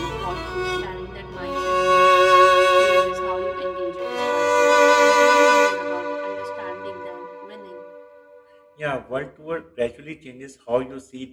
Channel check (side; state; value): both; identical; correlation 1.00